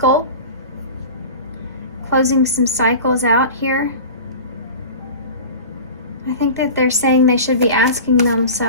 Closing some cycles out here. I think that they're saying they should be asking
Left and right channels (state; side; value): inverted; both; correlation -0.35